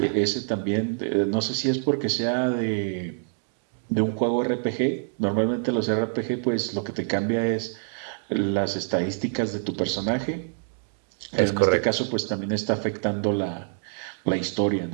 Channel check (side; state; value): left; silent; digital silence